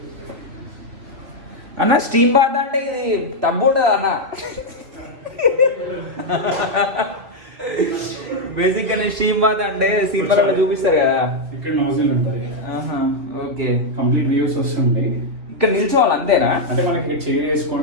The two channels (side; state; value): left; late; 3.3 ms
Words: అన్న స్టీమ్ బాత్ అంటే ఇది టబ్ ఉంటుంది అన్న. బేసిక్గా స్టీమ్ బాత్ అంటే సినిమాలలో చూపిస్తారు కదా, ఇక్కడ నోజిల్ ఉంటుంది. ఓకే, కంప్లీట్ వ్యూస్ వస్తుంది. ఇక్కడ నిల్చోవాలి అంతేనా? అంటే మనకి ఇక్కడ చైర్